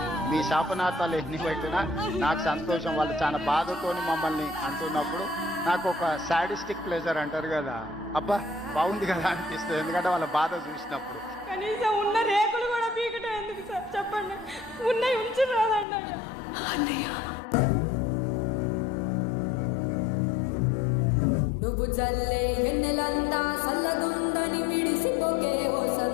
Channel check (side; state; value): right; drops out; at 15.9 s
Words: మీ శాపనార్థాలు ఎన్ని పెట్టినా నాకు సంతోషం. వాళ్ళు చాలా బాధతోని మమ్మల్ని అంటున్నప్పుడు నాకు ఒక సాడిస్టిక్ ప్లెజర్ అంటారు కదా, అబ్బా బాగుంది కదా అనిపిస్తుంది. ఎందుకంటే వాళ్ళ బాధ చూసినప్పుడు. కనీసం ఉన్న రేకులు కూడా పీకటం ఎందుకు సార్ చెప్పండి? ఉన్నాయి ఉంచి రాదండి అన్నయ్య. నువ్వు జల్లే ఎన్నెలంతా సల్లగుందని మిడిసిపోకే ఓ